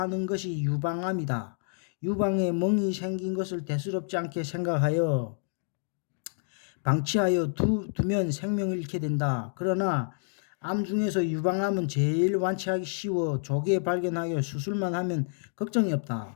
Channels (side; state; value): right; silent; digital silence